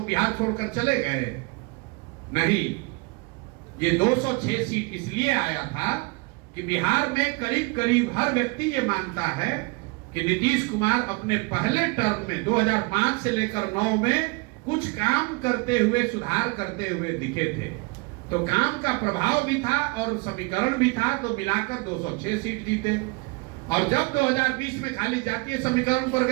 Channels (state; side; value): quieter; left; 27.8 dB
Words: बिहार छोड़कर चले गए? नहीं, ये 206 सीट इसलिए आया था कि बिहार में करीब करीब हर व्यक्ति ये मानता है कि नीतीश कुमार अपने पहले टर्म में 2005 से लेकर 9 में कुछ काम करते हुए, सुधार करते हुए दिखे थे। तो काम का प्रभाव भी था और समीकरण भी था, तो मिलाकर 206 सीट जीते। और जब 2020 में खाली जातीय समीकरण पर